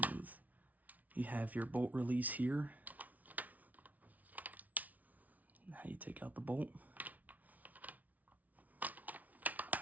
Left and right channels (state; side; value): late; left; 0.074 ms